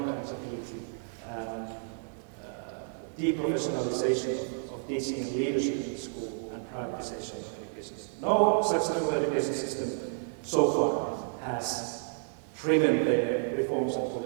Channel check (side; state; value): left; silent; digital silence